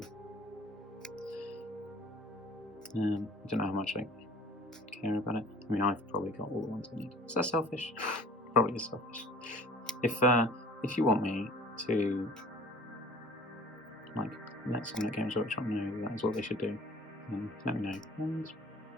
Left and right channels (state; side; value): normal; both; correlation 0.49